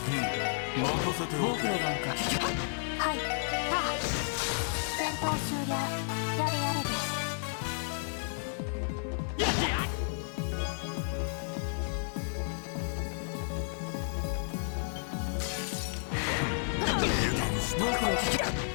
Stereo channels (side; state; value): right; silent; digital silence